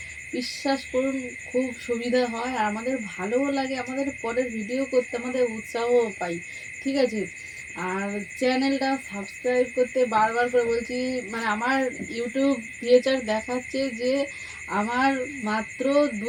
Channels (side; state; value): both; identical; correlation 1.00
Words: বিশ্বাস করুন খুব সুবিধা হয়, আর আমাদের ভালোও লাগে, আমাদের পরের ভিডিও করতে আমাদের উৎসাহও পাই। ঠিক আছে, আর চ্যানেলটা সাবস্ক্রাইব করতে বারবার করে বলছি। আমার ইউটিউব ফিচার দেখাচ্ছে যে আমার মাত্র